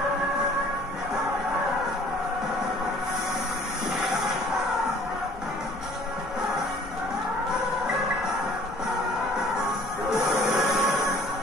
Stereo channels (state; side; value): normal; both; correlation 0.53